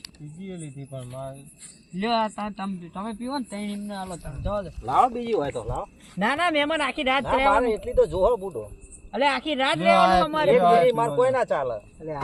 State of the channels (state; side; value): identical; both; correlation 1.00